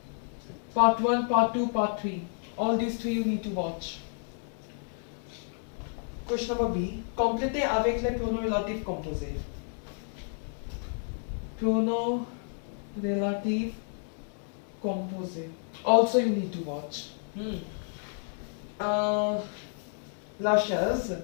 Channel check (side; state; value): right; silent; 57 dB below the other